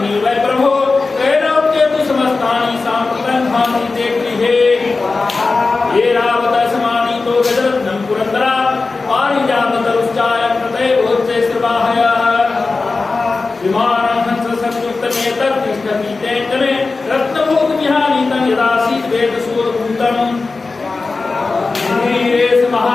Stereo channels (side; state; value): right; quieter; 3.9 dB